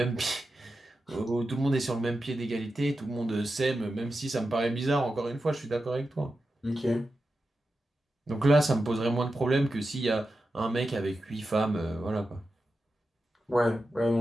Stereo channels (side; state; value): both; normal; correlation 0.91